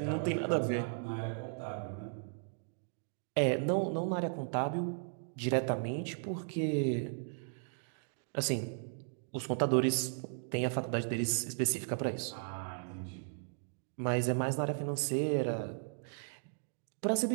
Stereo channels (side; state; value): left; silent; digital silence